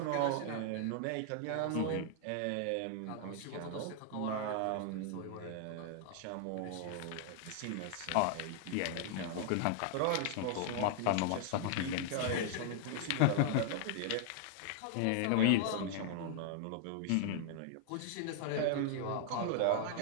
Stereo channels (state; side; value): different; both; correlation 0.00